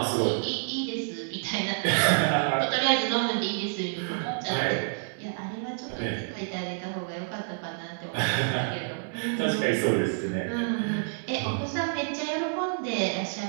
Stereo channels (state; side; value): silent; left; digital silence